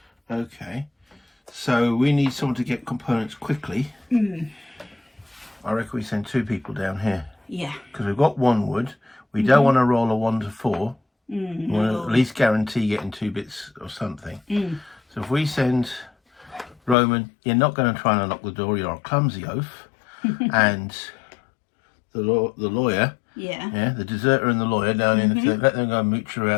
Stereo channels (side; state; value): right; drops out; at 16.9 s